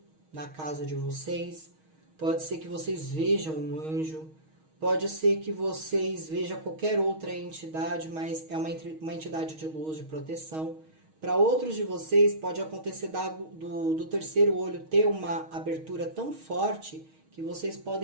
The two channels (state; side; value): late; left; 6.4 ms